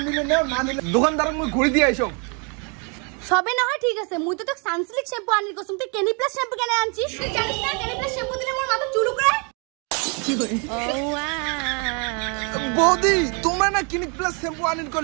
নিলে নাও না নিলে দোকানদার মুই ঘুরে দিয়ে আইছো সবে না হয় ঠিক আছে মুই তো সানসিল্ক শ্যাম্পু আনির কসম তুই ক্লিনিক প্লাস শ্যাম্পু কেন আনছিস তুই জানিস না ক্লিনিক প্লাস শ্যাম্পু দিলে মোর মাথা চুল করে কি করে বৌদি তোমরা না ক্লিনিক প্লাস শ্যাম্পু আনির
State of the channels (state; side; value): quieter; left; 35.3 dB